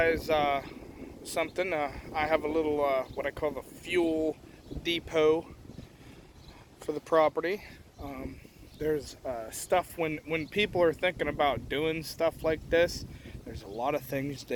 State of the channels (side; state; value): both; identical; correlation 1.00